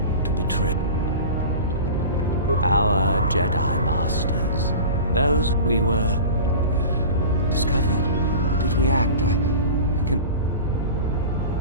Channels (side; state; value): both; inverted; correlation -0.35